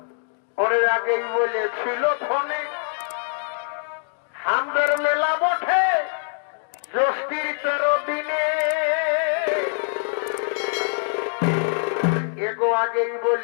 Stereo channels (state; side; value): silent; right; digital silence